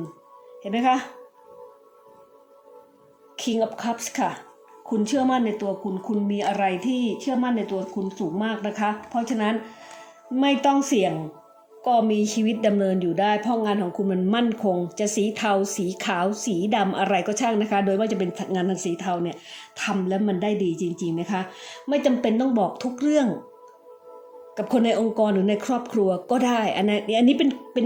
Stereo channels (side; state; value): both; identical; correlation 1.00